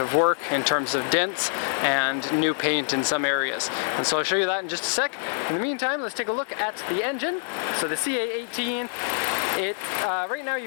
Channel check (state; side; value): silent; right; digital silence